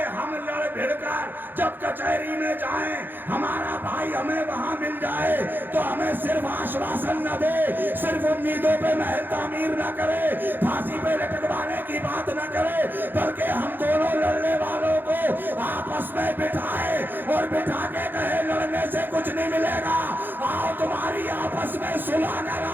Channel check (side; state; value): left; late; 0.093 ms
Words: ہم لڑ بھڑ کر جب کچہری میں جائیں ہمارا بھائی ہمیں وہاں مل جائے تو ہمیں صرف آشواسن نہ دے, صرف امیدوں پہ محل تعمیر نہ کرے, پھانسی پہ لٹکوانے کی بات نہ کرے, بلکہ ہم دونوں لڑنے والوں کو آپس میں بٹھائے اور بٹھا کے کہے لڑنے سے کچھ نہیں ملے گا, آؤ تمہاری آپس میں صلح